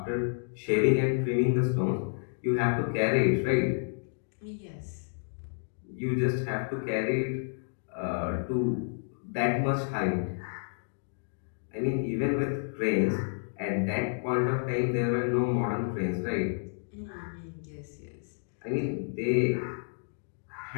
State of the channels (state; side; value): silent; right; digital silence